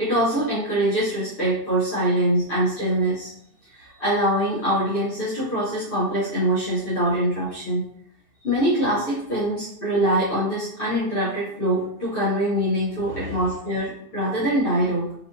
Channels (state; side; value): late; right; 2.6 ms